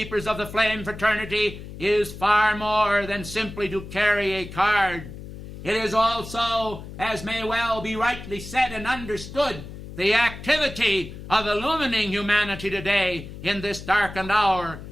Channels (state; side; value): noise; left; hum, 12 dB below the sound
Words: of the Flame fraternity is far more than simply to carry a card. It is also, as may well be rightly said and understood, the activity of illumining humanity today in this darkened hour,